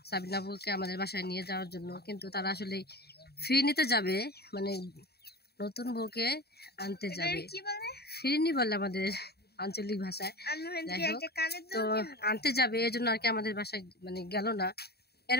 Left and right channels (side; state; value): right; late; 0.47 ms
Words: সাবিনা আপুকে আমাদের বাসায় নিয়ে যাওয়ার জন্য। কিন্তু তারা আসলে ফ্রি নিতে যাবে, মানে নতুন বউকে আনতে যাবে। ফিরিনি বলে আমাদের আঞ্চলিক ভাষায়। যাই হোক, তো আনতে যাবে এই জন্য আর কি আমাদের বাসায় মানে গেল না।